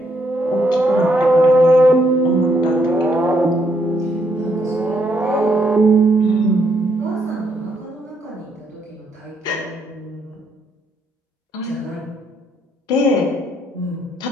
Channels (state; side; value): normal; both; correlation 0.73